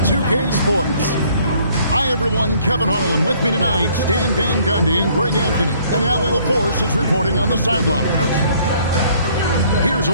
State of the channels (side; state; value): both; inverted; correlation -0.61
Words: 2K Sports. Hi, everyone. Kevin Harlan with me tonight. Stan Van Gundy and Greg Anthony. And Allie LaForce is reporting on the sideline. Here's a